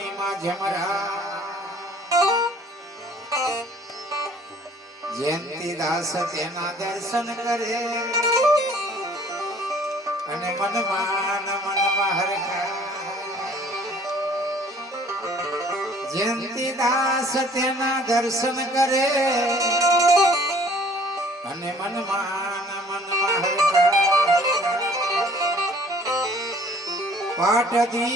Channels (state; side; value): normal; both; correlation 0.54